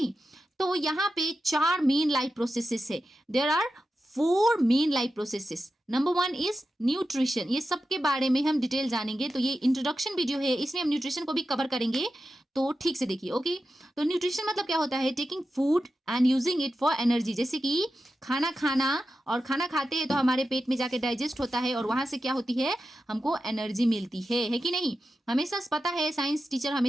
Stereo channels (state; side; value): normal; both; correlation 0.91